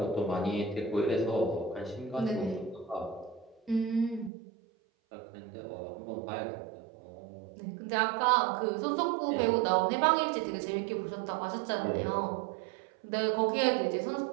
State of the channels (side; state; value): left; drops out; at 4.3 s